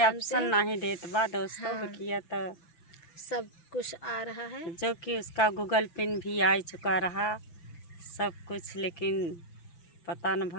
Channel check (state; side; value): late; right; 5.9 ms